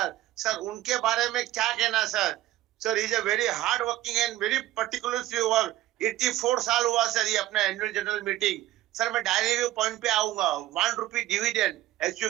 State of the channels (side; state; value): left; quieter; 15.1 dB